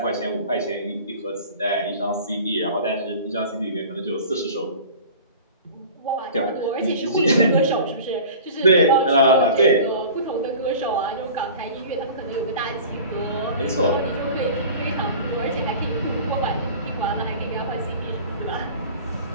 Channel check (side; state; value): both; inverted; correlation -0.40